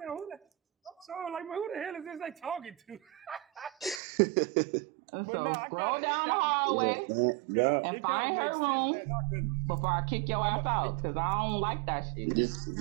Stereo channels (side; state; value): left; drops out; at 4.0 s